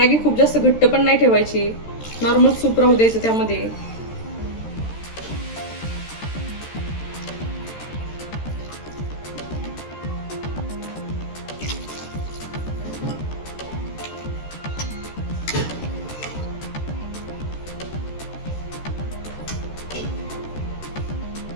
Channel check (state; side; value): late; right; 13 ms